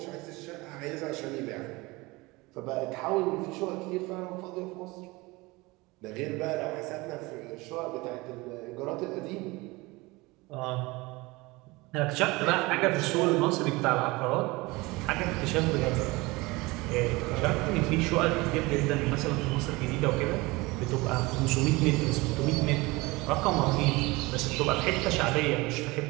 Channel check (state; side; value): quieter; left; 22.8 dB